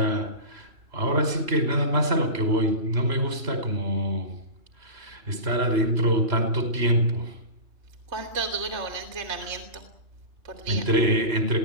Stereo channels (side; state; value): left; late; 3.0 ms